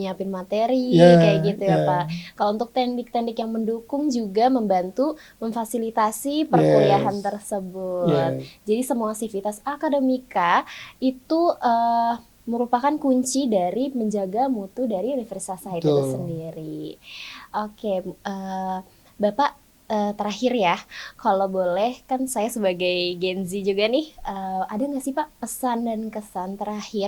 materi Ya, kayak gitu ya ya. Pak. Kalau untuk teknik-teknik yang mendukung juga membantu memfasilitasi perkuliahan Yes. tersebut. Yes. Jadi semua Civitas Akademika itu merupakan kunci dari menjaga mutu dari Universitas Sahid itu Betul. sendiri. Oke, Bapak, terakhir ya, kalau boleh kan saya sebagai Gen Z juga nih, ada nggak sih Pak pesan dan kesan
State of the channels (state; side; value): identical; both; correlation 1.00